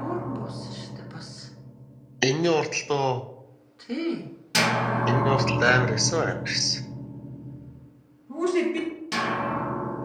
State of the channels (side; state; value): both; identical; correlation 1.00